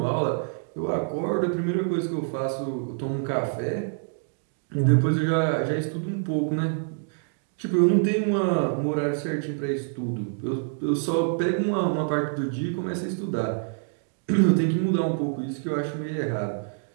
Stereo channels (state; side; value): silent; left; digital silence